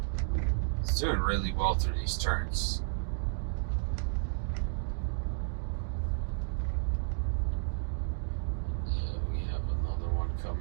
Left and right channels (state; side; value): silent; left; digital silence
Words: It's doing really well through these turns.